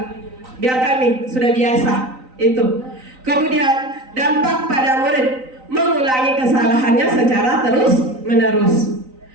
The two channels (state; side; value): late; left; 3.9 ms